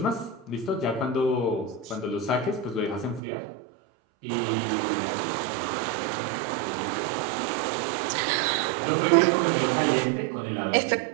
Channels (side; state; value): left; drops out; at 3.2 s